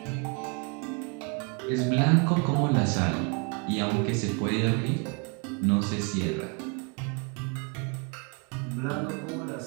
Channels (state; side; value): quieter; left; 33.8 dB